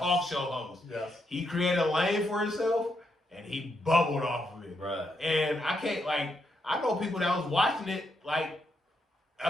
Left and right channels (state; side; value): normal; both; correlation 0.80